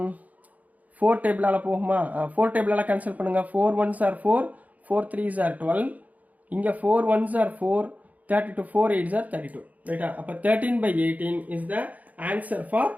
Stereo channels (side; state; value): left; late; 0.076 ms